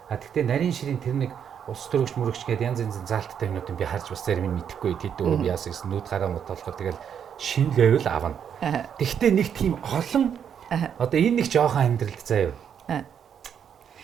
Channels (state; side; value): quieter; left; 8.2 dB